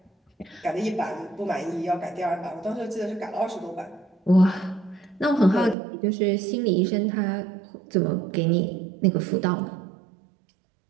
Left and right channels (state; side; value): drops out; left; at 5.8 s